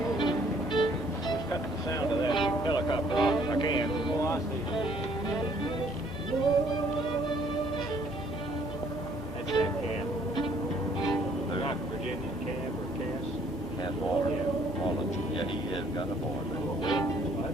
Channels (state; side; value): noise; right; hum, 16 dB below the sound